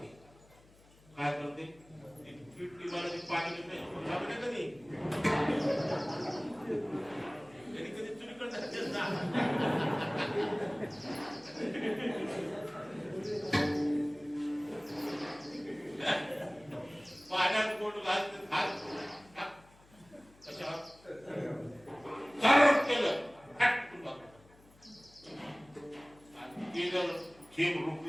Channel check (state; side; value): noise; left; hum, 27 dB below the sound